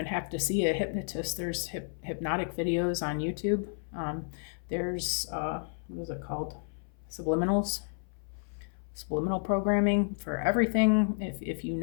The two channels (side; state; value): right; silent; 57 dB below the other